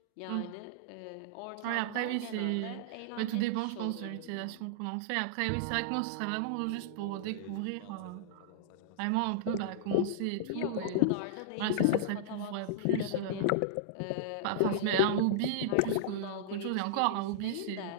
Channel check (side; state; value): both; different; correlation -0.02